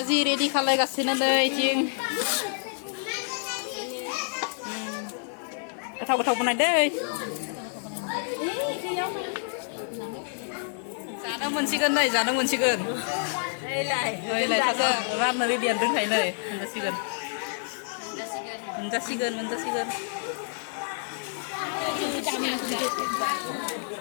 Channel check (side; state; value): right; silent; 59 dB below the other